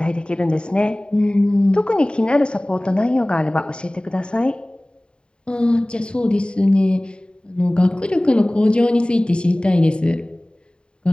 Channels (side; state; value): right; late; 0.051 ms